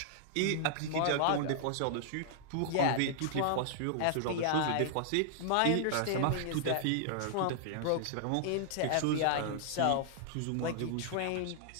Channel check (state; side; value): different; both; correlation -0.01